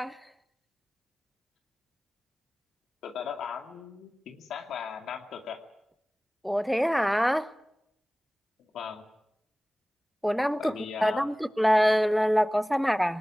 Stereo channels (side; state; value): both; normal; correlation 0.98